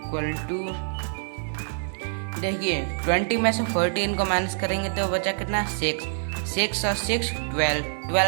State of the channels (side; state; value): left; silent; digital silence